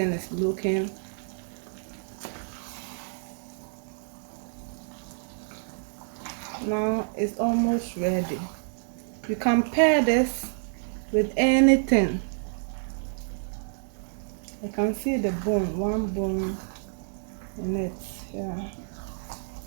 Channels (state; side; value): silent; left; 59 dB below the other